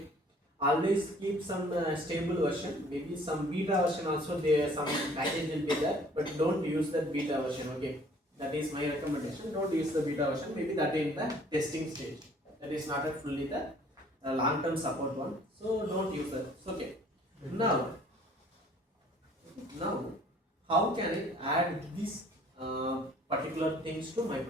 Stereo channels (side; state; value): both; normal; correlation 0.55